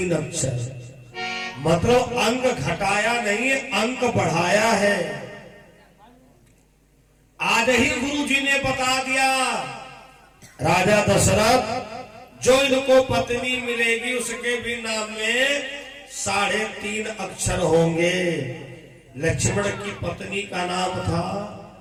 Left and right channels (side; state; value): both; identical; correlation 1.00